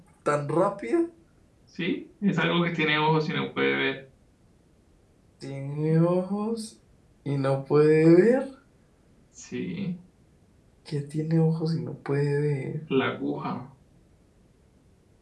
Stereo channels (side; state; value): both; identical; correlation 1.00